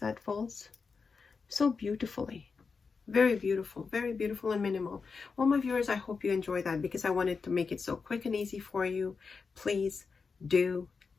falls? So beautifully. Very beautiful and minimal. Well, my viewers, I hope you enjoy that, because I wanted to make it so quick and easy for you. Please do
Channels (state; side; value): quieter; right; 5.0 dB